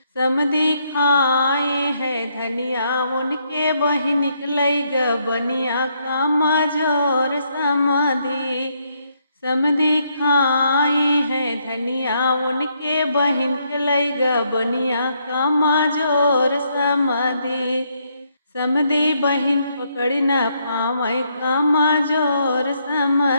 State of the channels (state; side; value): inverted; both; correlation -0.74